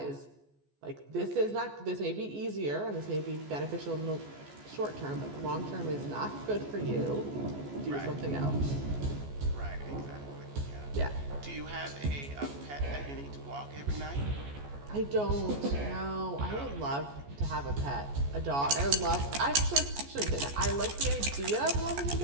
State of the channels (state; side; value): late; left; 14 ms